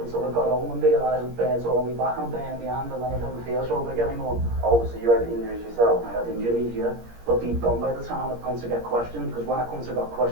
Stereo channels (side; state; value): left; late; 17 ms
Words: I got home and realised it burnt all my back and burned my hand, and then I didn't feel so big anymore. Oh, so you had injuries yourself? I had injuries, yeah. But deep down by the time I'd come to get questioned, because when I come to get